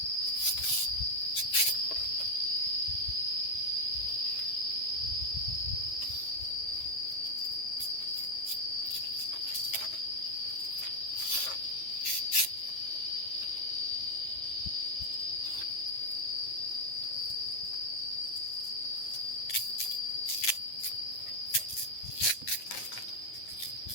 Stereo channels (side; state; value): right; late; 8.9 ms